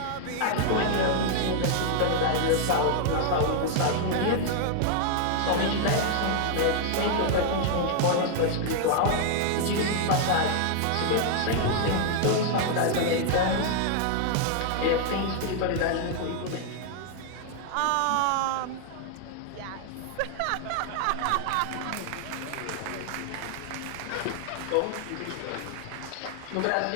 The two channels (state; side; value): different; both; correlation 0.00